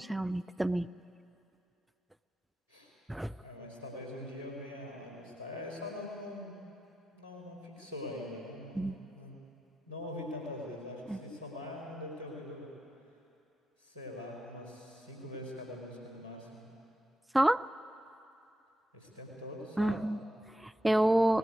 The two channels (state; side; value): normal; both; correlation 0.88